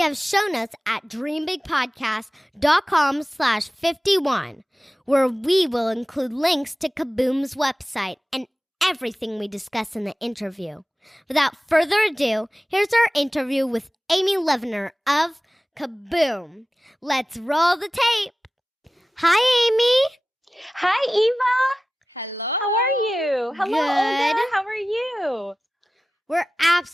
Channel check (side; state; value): both; normal; correlation 0.96